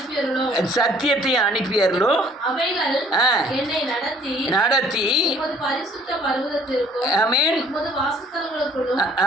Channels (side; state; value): both; normal; correlation 0.57